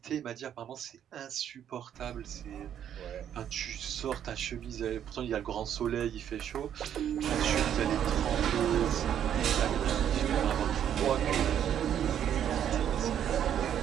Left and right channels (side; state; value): left; quieter; 9.7 dB